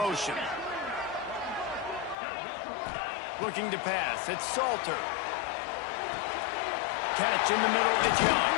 Looking to pass. It's Salter. Catch in the middle. It's Young.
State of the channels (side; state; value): right; drops out; at 2.1 s